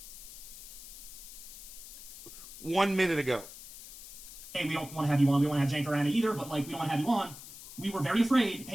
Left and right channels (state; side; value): noise; left; hiss, 14 dB below the sound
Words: 1 minute ago. Hey, we don't want to have you on. We don't want to have Jank or Anna either, but, like, we don't want to have you on. We were very afraid,